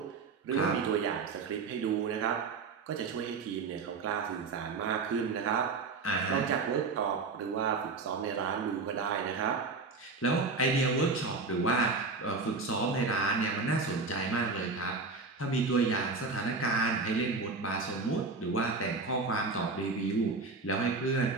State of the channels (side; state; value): left; quieter; 4.1 dB